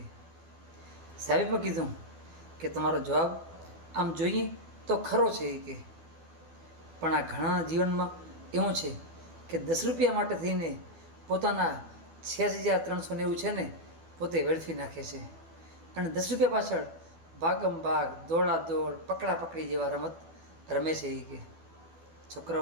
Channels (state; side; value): late; left; 12 ms